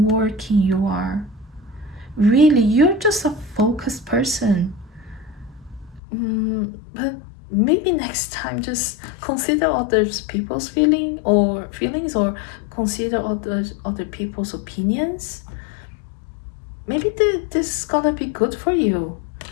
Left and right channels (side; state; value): right; drops out; at 6.0 s